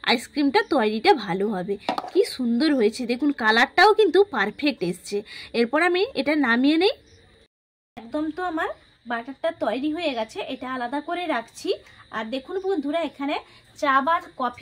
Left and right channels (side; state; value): both; identical; correlation 1.00